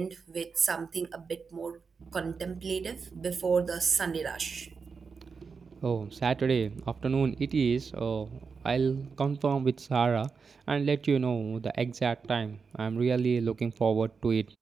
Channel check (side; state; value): left; quieter; 5.2 dB